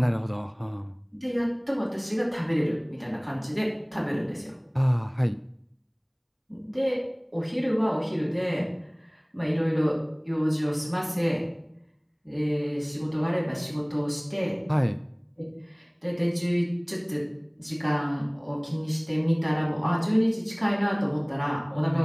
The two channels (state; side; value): identical; both; correlation 1.00